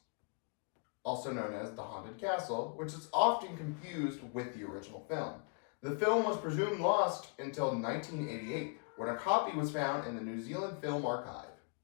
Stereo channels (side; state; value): right; quieter; 38.8 dB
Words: also known as The Haunted Castle, which is often confused with the original film. The film was presumed lost until 1988, when a copy was found in the New Zealand Film Archive.